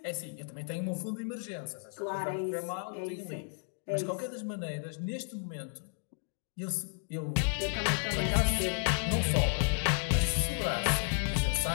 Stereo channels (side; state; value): right; silent; 56 dB below the other